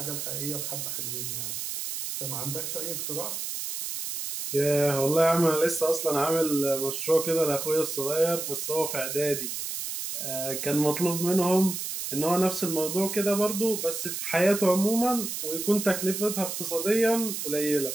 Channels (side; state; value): right; noise; hiss, 5 dB below the sound